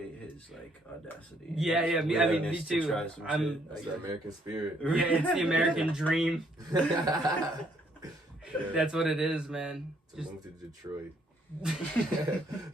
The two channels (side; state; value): both; normal; correlation 0.68